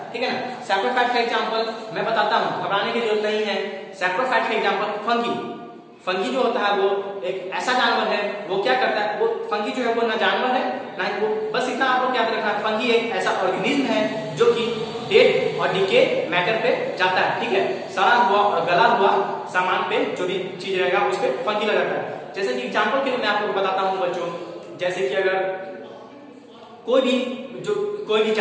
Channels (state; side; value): identical; both; correlation 1.00